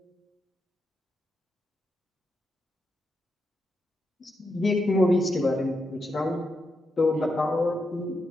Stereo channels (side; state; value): both; normal; correlation 0.84